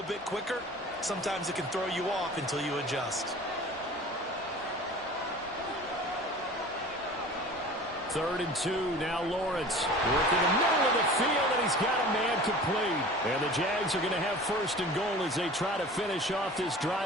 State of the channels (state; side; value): normal; both; correlation 0.41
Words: bit quicker. Sometimes it can throw you off until you adjust. 3rd and 2, now Lawrence. Working the middle of the field, and he's got a man complete. And the Jags are going to have 1st and goal as they try to finish off this